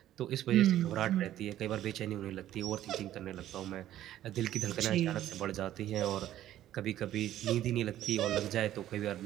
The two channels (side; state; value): left; quieter; 12.7 dB